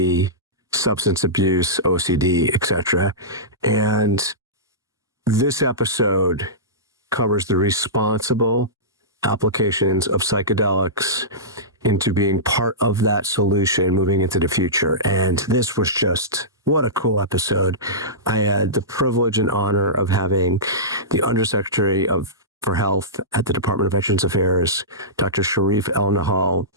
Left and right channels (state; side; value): normal; both; correlation -0.18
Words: substance abuse, OCD, etc. And this episode covers the responsible applications of psychedelics into being part of that solution moving into the future. And this was just, what a cool episode. I had the privilege and honor of having the Undersecretary for Health at the Department of Veterans Affairs, Dr. Shereef Elnahal,